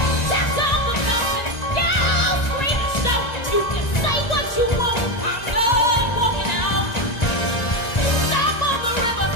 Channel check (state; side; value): late; right; 2.0 ms